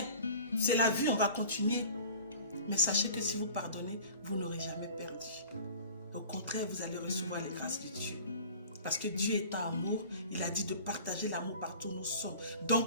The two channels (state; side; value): inverted; both; correlation -0.43